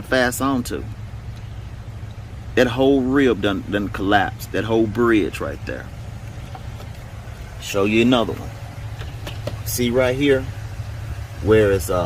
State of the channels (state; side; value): identical; both; correlation 1.00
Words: fasten onto. That whole rib done collapsed. That whole bridge right there. Show you another one. See right here where it's